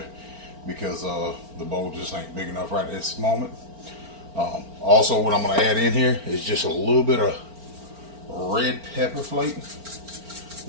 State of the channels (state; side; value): late; left; 4.4 ms